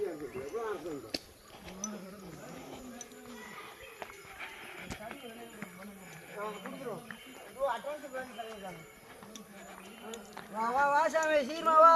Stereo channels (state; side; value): identical; both; correlation 1.00